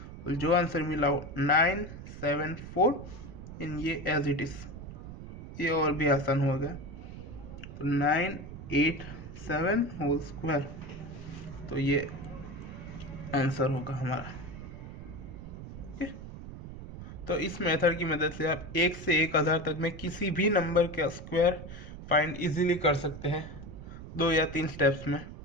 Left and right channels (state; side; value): noise; right; rumble, 12 dB below the sound